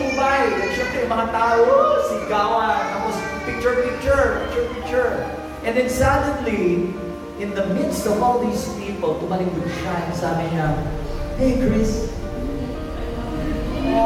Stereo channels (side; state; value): both; identical; correlation 1.00